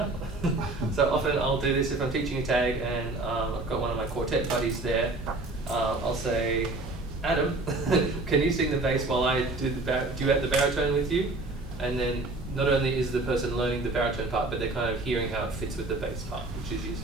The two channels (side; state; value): left; quieter; 3.0 dB